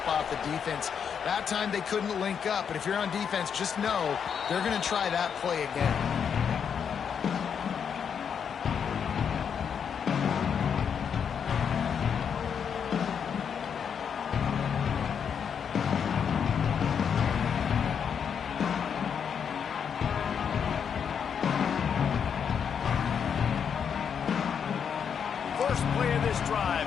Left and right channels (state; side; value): quieter; right; 7.3 dB